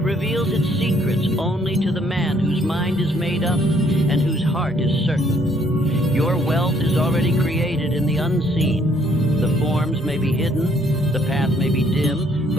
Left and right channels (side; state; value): both; normal; correlation 0.66